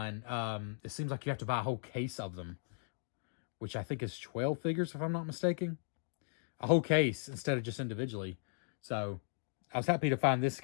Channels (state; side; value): silent; right; digital silence